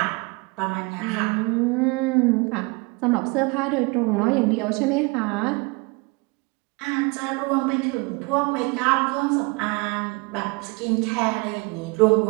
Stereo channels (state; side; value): quieter; left; 27.9 dB